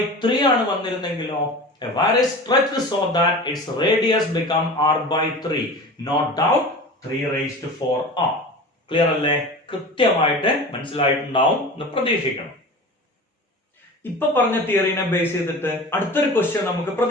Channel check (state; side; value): normal; both; correlation 0.35